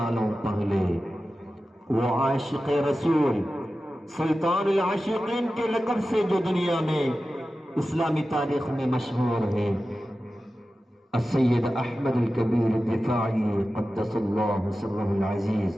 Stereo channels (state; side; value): normal; both; correlation 0.94